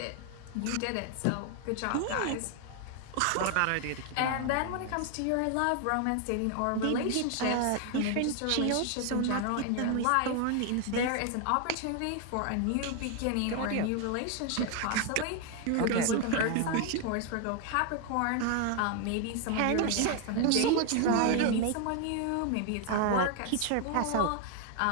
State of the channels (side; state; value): both; different; correlation 0.00